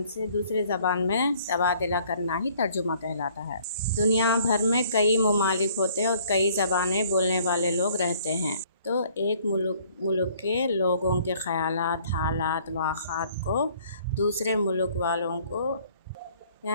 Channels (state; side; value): inverted; both; correlation -0.59